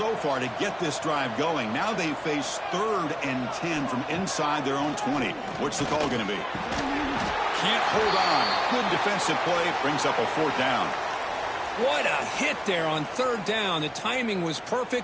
far to get this drive going. Now they face 3rd and 10 from inside their own 20. What's the call going to be? Can't hold on. Good defensive play. Brings up a 4th down. What a hit there on 3rd down. The timing was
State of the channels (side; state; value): both; identical; correlation 1.00